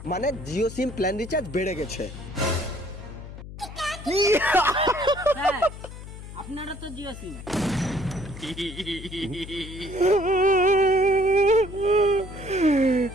মানে জিও সিম প্ল্যান রিচার্জ বেড়ে গেছে। হ্যাঁ, আপনারা তো জিও সিম।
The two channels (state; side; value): noise; left; hum, 13 dB below the sound